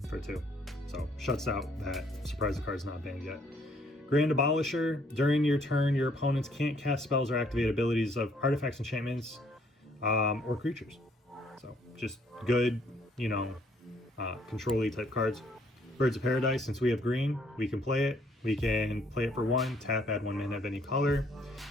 for 2. So shuts out that. Surprise, the card's not banned yet. Grand Abolisher. During your turn, your opponents can't cast spells or activate abilities of artifacts, enchantments, or creatures. So just good, you know, control-y type cards. Birds of Paradise, since we have green, we can play it. We can play it for 1, tap, add 1 mana of any color.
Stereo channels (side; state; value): both; normal; correlation 0.66